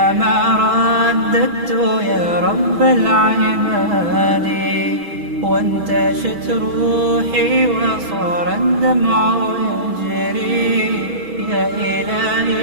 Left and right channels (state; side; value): late; left; 6.1 ms